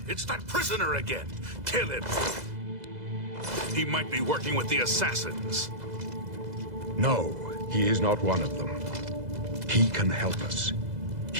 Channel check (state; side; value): late; left; 2.0 ms